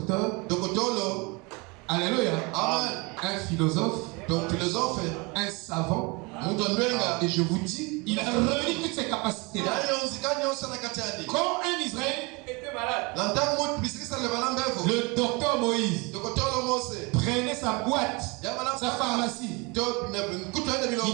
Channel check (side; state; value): left; quieter; 27.6 dB